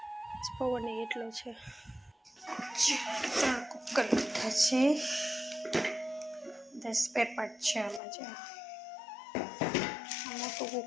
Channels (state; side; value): drops out; right; at 8.0 s